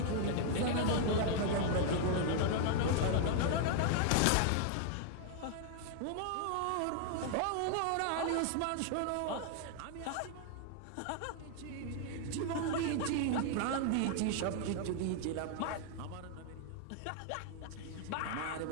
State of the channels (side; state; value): both; different; correlation 0.00